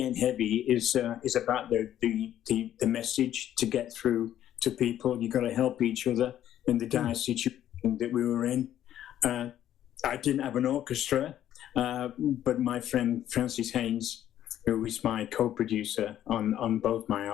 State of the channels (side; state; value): right; quieter; 11.5 dB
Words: Ain't Heavy is about the message to get through to people. You got to help each other in the dire situation that we were in. I didn't have an orchestra, but my friend Francis Haynes, who is my co-producer on both my